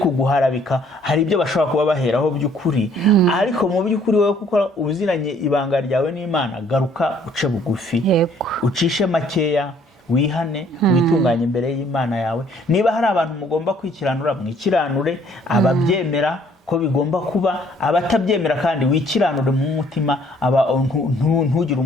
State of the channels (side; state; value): both; normal; correlation 0.61